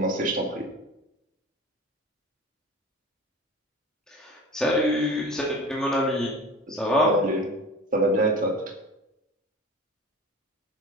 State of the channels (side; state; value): both; normal; correlation 0.36